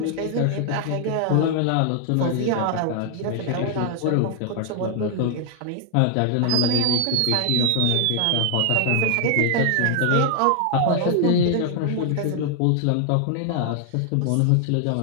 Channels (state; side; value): different; both; correlation 0.00